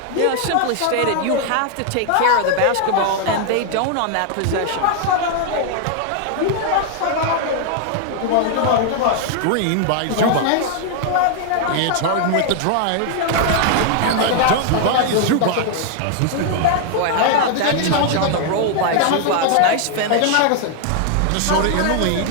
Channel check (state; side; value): different; both; correlation 0.00